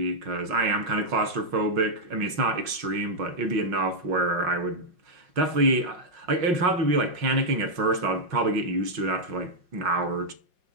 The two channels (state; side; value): late; left; 5.6 ms